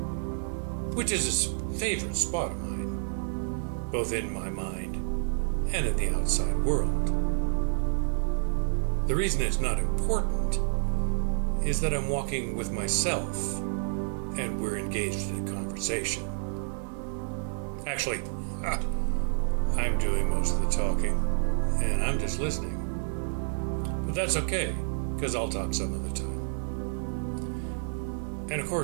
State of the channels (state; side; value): silent; left; digital silence